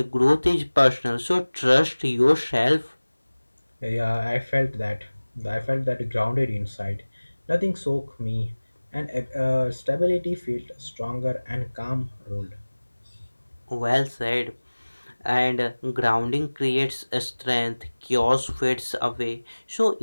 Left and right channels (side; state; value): both; inverted; correlation -1.00